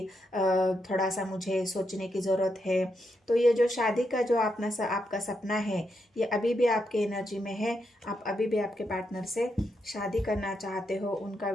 थोड़ा सा मुझे सोचने की ज़रूरत है। तो ये जो शादी का जो आपका सपना है, ये अभी भी आपके एनर्जी में है। आप अभी भी आपके पार्टनर से शादी करना चाहते हो, उनका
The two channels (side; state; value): both; normal; correlation 0.82